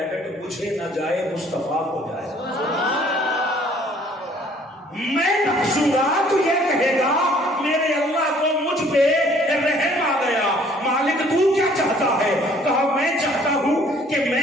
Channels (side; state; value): both; normal; correlation 0.58